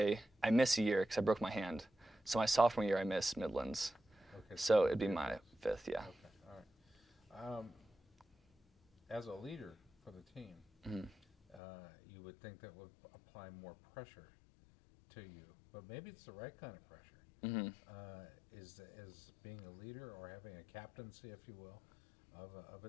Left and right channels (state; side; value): drops out; right; at 11.6 s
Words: missed a year because I broke my hand. So my sophomore year, I missed Midlands. Okay. So it'd be my 5th, yeah. Okay, all right. As a leader for the team, you would think that would apply more pressure to you, but maybe it's the right kind of pressure. Is being a leader or having a captaincy, if you will, of a